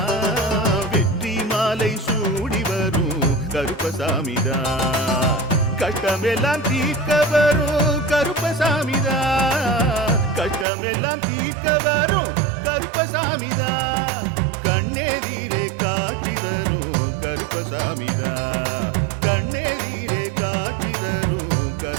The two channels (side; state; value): left; drops out; at 10.7 s